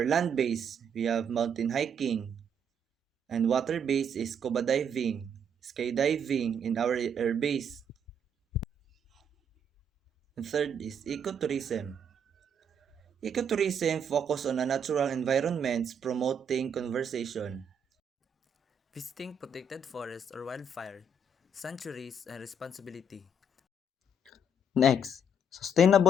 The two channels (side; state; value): both; normal; correlation 0.70